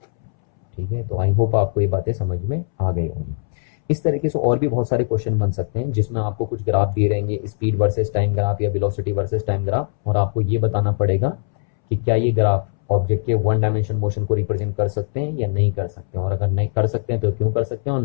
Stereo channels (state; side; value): silent; right; 65 dB below the other